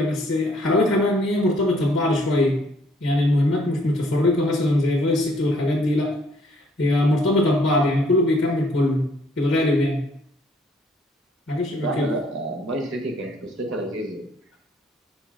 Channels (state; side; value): normal; both; correlation 0.64